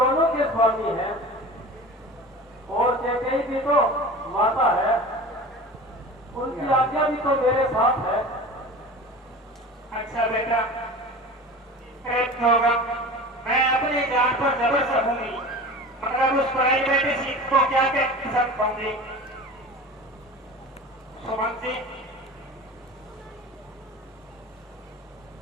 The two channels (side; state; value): both; normal; correlation 0.35